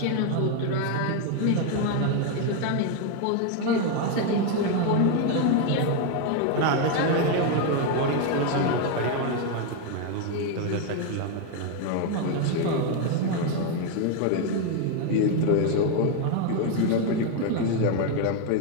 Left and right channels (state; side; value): different; both; correlation 0.01